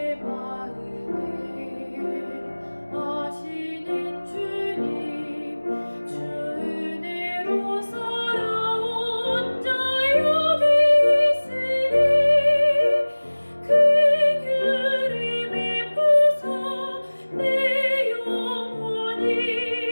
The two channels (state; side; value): inverted; both; correlation -1.00